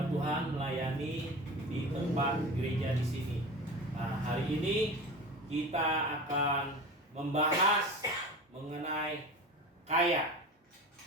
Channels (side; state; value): both; normal; correlation 0.32